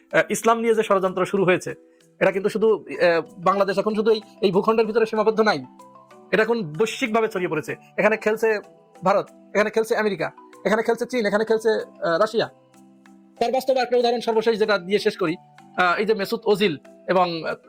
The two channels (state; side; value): identical; both; correlation 1.00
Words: ইসলাম নিয়ে যে ষড়যন্ত্র শুরু হয়েছে, এটা কিন্তু শুধু বাংলাদেশ এখন শুধু এই ভূখণ্ডের ভিতরে সীমাবদ্ধ নাই, এটা এখন বৈশ্বিকভাবে ছড়িয়ে পড়েছে। এখানে খেলছে ভারত, এখানে খেলছে আমেরিকা, এখানে খেলছে চীন, এখানে খেলছে রাশিয়া। তার বাস্তব একটা উদাহরণ সর্বশেষ যেটা দিয়ে শেষ করি, এই যে মেসুত ওজিল এবং